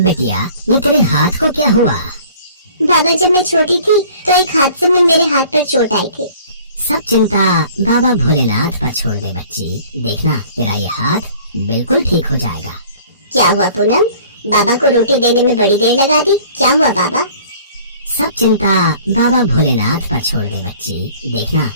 ये तेरे हाथ को क्या हुआ? बाबा जब मैं छोटी थी तो एक हादसे में मेरे हाथ पर चोट आई थी। सब चिंता बाबा भोलेनाथ पर छोड़ दे बच्ची, देखना तेरा ये हाथ बिल्कुल ठीक हो जाएगा। क्या हुआ पूनम, बाबा को रोटी देने में बड़ी देर लगा दी, क्या हुआ बाबा? सब चिंता बाबा भोलेनाथ पर छोड़ दे बच्ची, देखना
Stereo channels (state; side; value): inverted; both; correlation -0.50